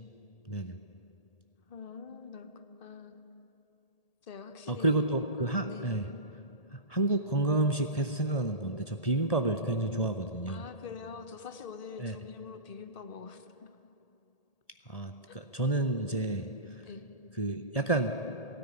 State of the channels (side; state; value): right; late; 1.8 ms